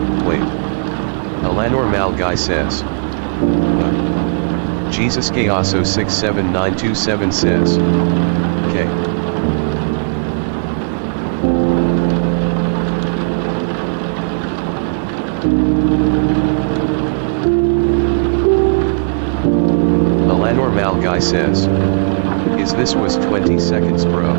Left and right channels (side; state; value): left; silent; digital silence